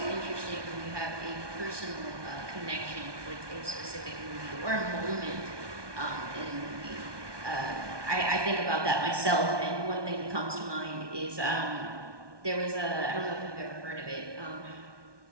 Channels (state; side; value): late; left; 1.2 ms